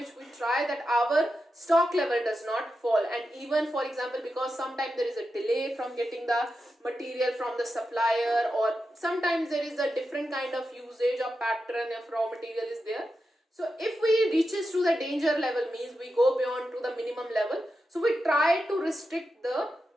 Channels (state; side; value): normal; both; correlation 0.89